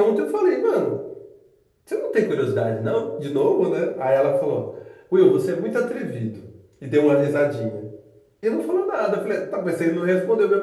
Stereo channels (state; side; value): identical; both; correlation 1.00